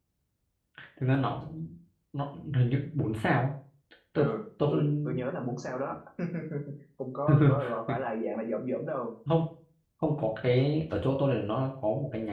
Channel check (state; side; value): identical; both; correlation 1.00